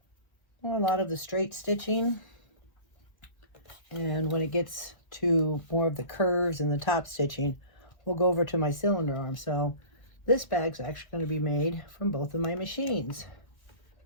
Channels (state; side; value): late; right; 1.6 ms